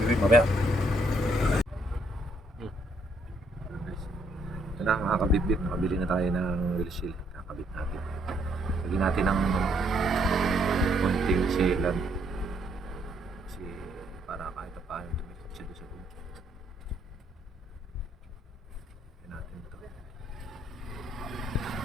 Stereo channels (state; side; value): normal; both; correlation 0.70